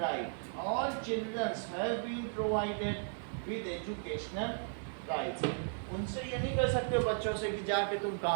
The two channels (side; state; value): left; silent; digital silence